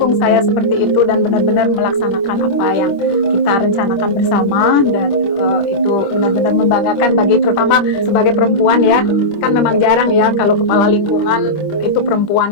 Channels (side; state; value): right; late; 25 ms